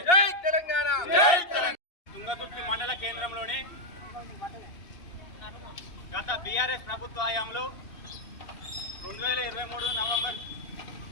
జై తెలంగాణ. తుంగతుర్తి మండల కేంద్రంలోని గత బీఆర్ఎస్ ప్రభుత్వ హయాంలో 2023 నవంబర్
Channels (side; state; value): right; late; 2.7 ms